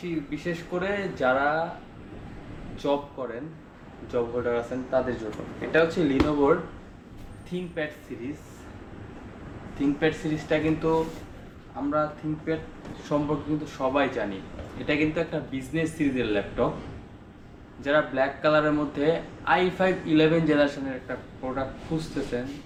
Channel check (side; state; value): both; identical; correlation 1.00